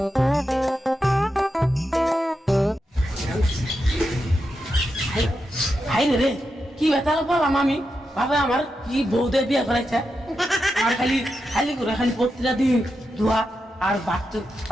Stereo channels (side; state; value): both; normal; correlation 0.87